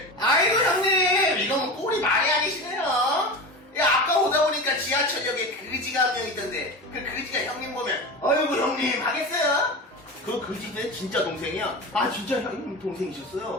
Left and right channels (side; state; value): both; normal; correlation 0.28